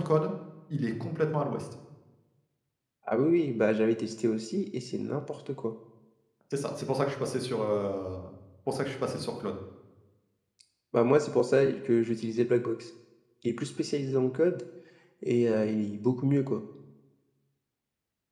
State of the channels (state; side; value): identical; both; correlation 1.00